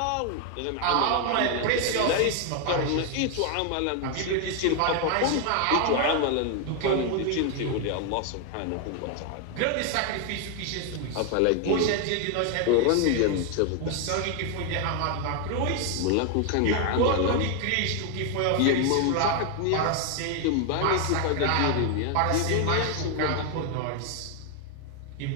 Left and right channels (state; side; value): different; both; correlation 0.01